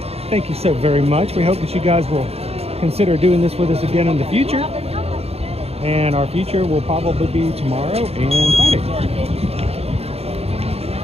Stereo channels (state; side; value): late; left; 0.29 ms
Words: thank you so very much. We hope that you guys will consider doing this with us again in the future. And our future will probably be tomorrow and Friday.